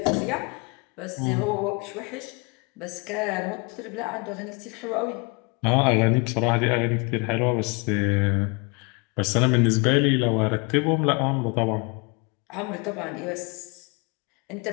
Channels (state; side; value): quieter; right; 30.8 dB